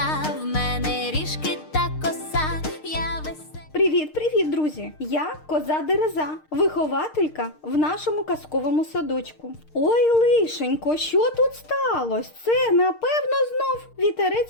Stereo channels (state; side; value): late; right; 6.5 ms